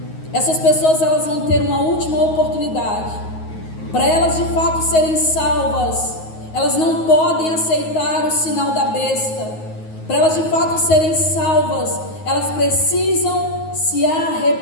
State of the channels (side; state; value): right; late; 9.4 ms